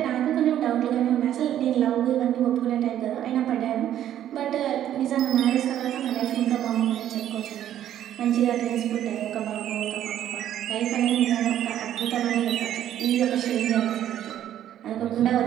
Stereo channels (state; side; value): quieter; left; 11.3 dB